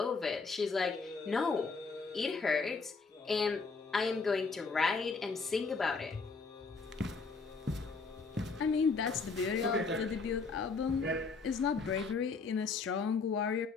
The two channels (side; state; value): right; quieter; 4.5 dB